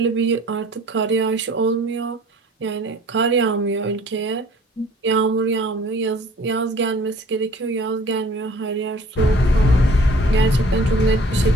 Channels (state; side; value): normal; both; correlation 0.51